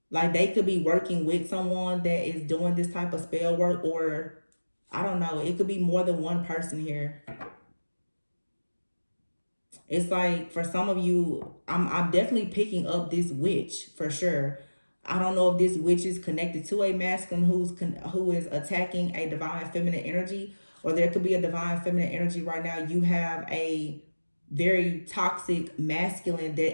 Like they could be working with someone that is doing this type of spell work, or I don't know. It could be more than one person here. It's like for some of you, I'm definitely picking up this witch for sure. I don't know if this witch is connected to a masculine who is attacking a divine feminine energy, or there could be a divine feminine energy right now. You have a very toxic masculine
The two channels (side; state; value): both; inverted; correlation -1.00